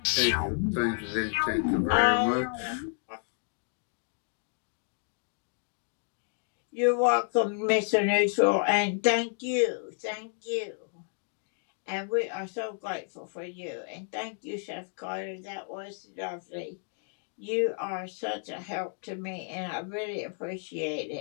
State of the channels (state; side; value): silent; right; 57 dB below the other